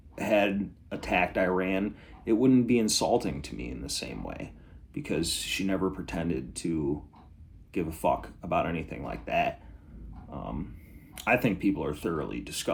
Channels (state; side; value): identical; both; correlation 1.00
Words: attacked Iran, it wouldn't be insulting to me in the same way because she never pretended to give a fuck about anything like that. I think people are thoroughly